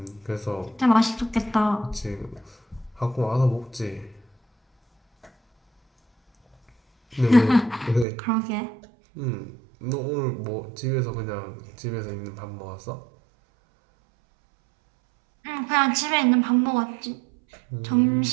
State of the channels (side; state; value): left; drops out; at 8.1 s